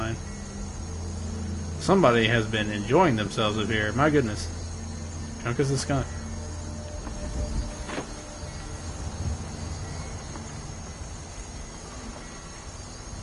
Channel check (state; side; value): identical; both; correlation 1.00